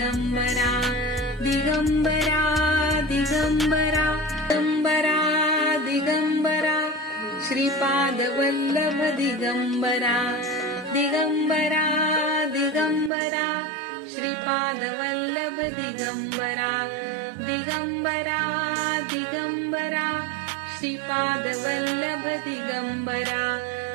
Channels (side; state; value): left; drops out; at 13.1 s